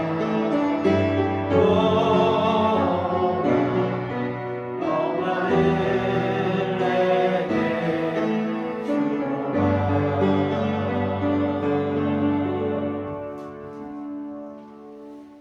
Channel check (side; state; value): both; identical; correlation 1.00